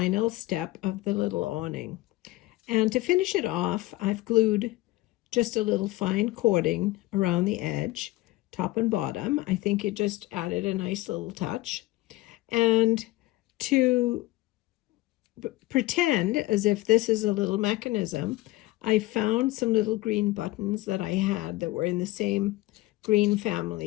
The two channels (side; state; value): right; quieter; 18.6 dB